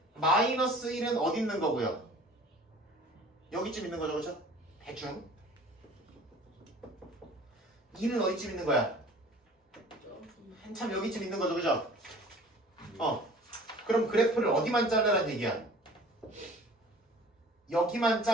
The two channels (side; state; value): both; normal; correlation 0.47